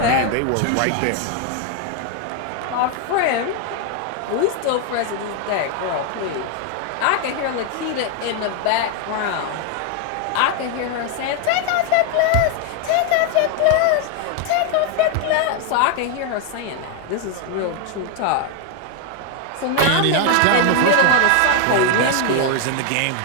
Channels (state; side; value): different; both; correlation 0.01